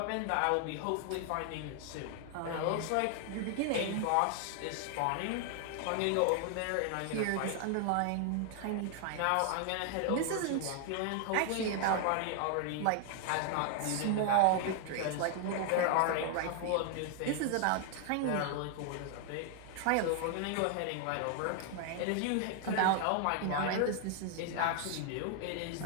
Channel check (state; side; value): different; both; correlation 0.00